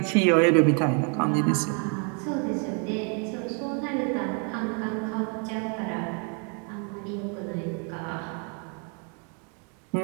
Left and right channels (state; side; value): quieter; left; 39.8 dB